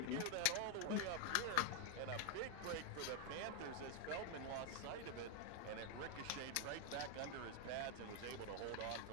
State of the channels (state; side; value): different; both; correlation 0.01